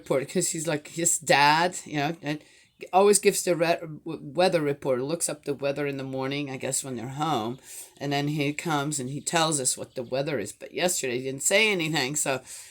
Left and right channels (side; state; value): both; identical; correlation 1.00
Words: Because he's like his dad, and always gives the weather report. Looks up the weather in the morning, I guess when they're home, and then he comes and he tells us what the weather is. But yesterday he didn't say anything, so